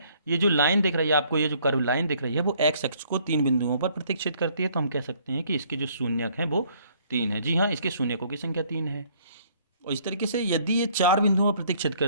ये जो लाइन दिख रही है आपको, ये जो कर्व लाइन दिख रही है वो एक्स अक्ष को 3 बिंदुओं पर प्रतिच्छेद करती है। तो हम कह सकते हैं कि इसके जो शून्यक हैं वो 3 है। जी हाँ, इसके शून्यकों की संख्या 3 है। और इस तरीके से यदि ये 4 बिंदुओं पर प्रतिच्छेद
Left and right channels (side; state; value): both; inverted; correlation -0.62